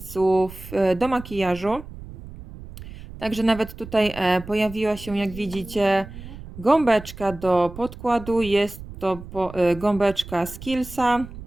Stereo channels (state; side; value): noise; right; rumble, 14 dB below the sound